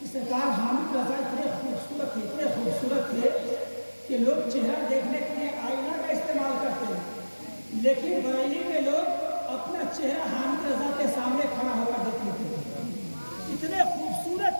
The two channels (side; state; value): both; inverted; correlation -1.00